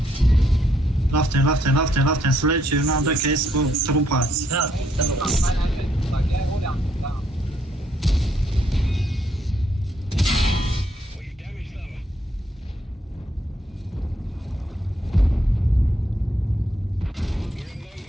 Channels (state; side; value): normal; both; correlation 0.72